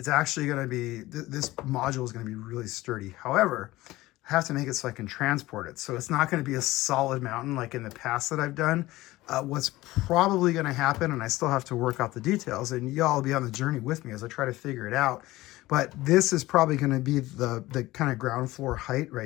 actually going to be, this module is going to be really sturdy. However, I have to make it so I can transport it. So it's not going to be a solid mountain like in the past that I've done. What's probably going to happen, and I still have to work out the details, and y'all will be on the journey with me as I try to figure it out. But this is probably going to be the kind of ground floor height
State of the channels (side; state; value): right; quieter; 18.1 dB